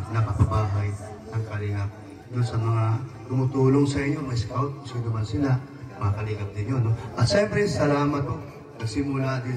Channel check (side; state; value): both; identical; correlation 1.00